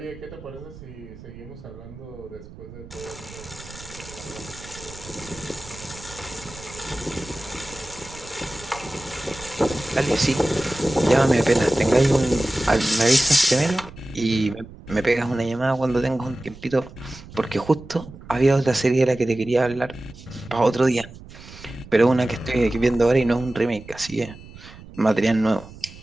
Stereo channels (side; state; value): right; noise; rumble, 17 dB below the sound